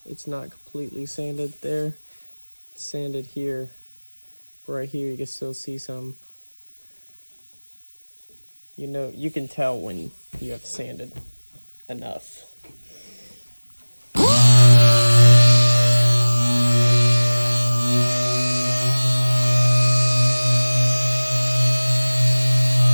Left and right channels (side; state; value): both; inverted; correlation -1.00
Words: it's not completely sanded there. It's sanded here. Right here you can still see some. You know, you can tell when you have sanded enough.